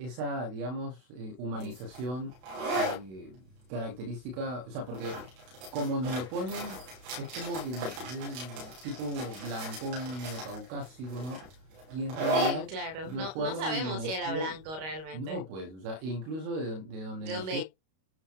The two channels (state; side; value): late; left; 32 ms